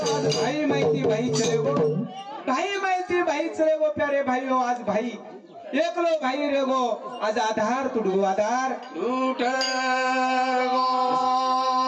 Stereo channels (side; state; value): both; identical; correlation 1.00